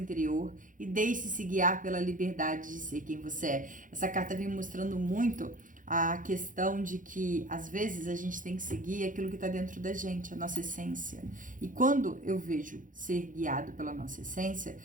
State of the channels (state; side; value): late; left; 0.38 ms